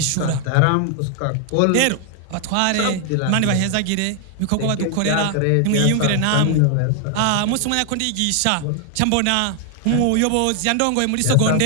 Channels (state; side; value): different; both; correlation 0.00